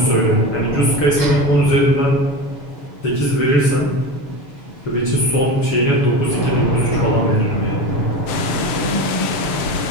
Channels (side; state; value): right; late; 7.0 ms